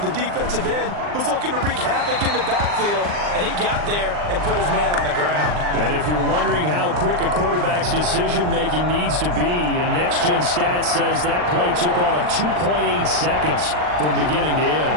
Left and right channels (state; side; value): late; left; 39 ms